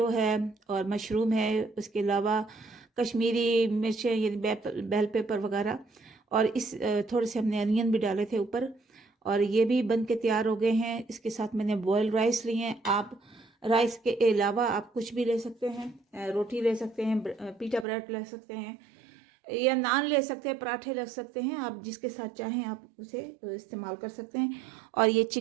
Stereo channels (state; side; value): drops out; left; at 17.9 s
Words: है और मशरूम है, उसके अलावा कश्मीरी मिर्चें यानी बेल पेपर वगैरह, और इस थोड़े से हमने अनियन भी डाले थे ऊपर, और ये भी बन के तैयार हो गए हैं। इसके साथ मैंने बॉयल राइस लिए हैं। आप राइस के अलावा आप कुछ भी ले सकते हैं, रोटी ले सकते हैं, पीटा ब्रेड ले सकते हैं, या नान ले सकते हैं, पराठे ले सकते हैं। आप जिसके साथ चाहें आप उसे इस्तेमाल कर सकते हैं। और ये